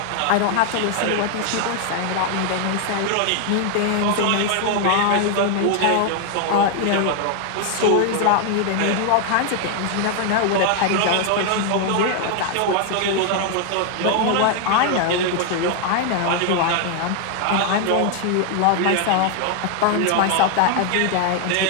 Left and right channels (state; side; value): different; both; correlation 0.00